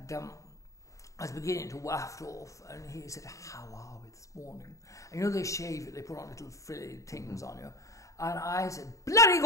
I was beginning to waft off. And he said, how are we this morning? And you know, they shave you. They put on little frilly things on you. And I said, bloody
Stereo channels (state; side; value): late; right; 0.16 ms